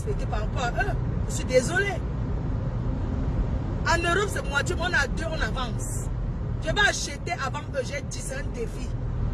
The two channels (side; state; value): both; identical; correlation 1.00